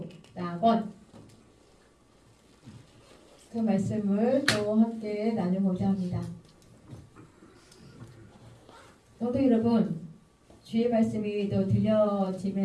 낙원. 그 말씀을 또 함께 나누고자 합니다. 성도 여러분, 주의 말씀이 또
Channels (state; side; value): identical; both; correlation 1.00